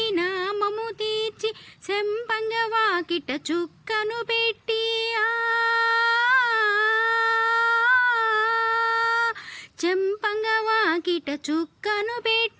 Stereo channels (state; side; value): identical; both; correlation 1.00